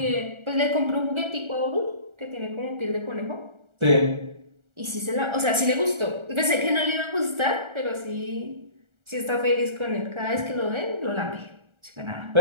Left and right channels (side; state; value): left; late; 1.4 ms